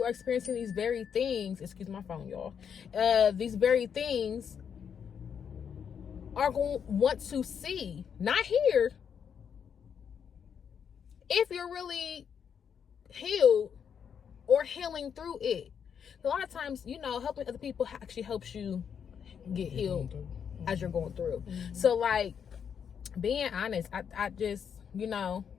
are experiencing these very things, excuse my phone, y'all, these very things are going to want to see, not hear, if you're really healed or healing through it. A lot of times, helping other people actually helps you get healed as you're going through. Mm-hmm. So, like, being honest, I just, we like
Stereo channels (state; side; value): quieter; right; 7.5 dB